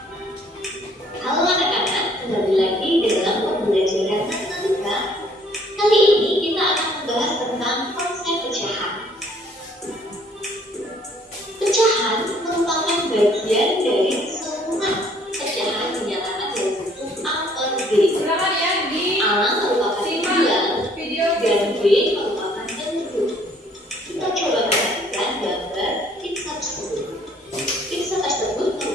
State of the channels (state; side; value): normal; both; correlation 0.61